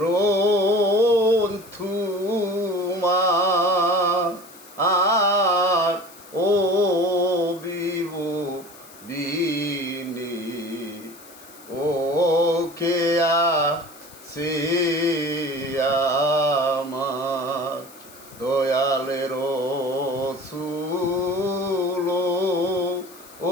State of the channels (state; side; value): noise; left; hiss, 21 dB below the sound